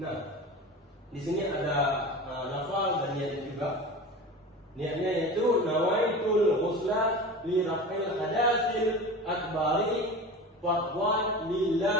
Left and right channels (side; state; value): both; normal; correlation 0.32